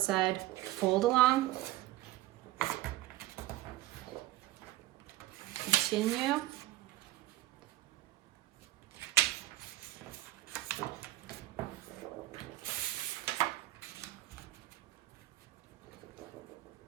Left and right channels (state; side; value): quieter; left; 16.4 dB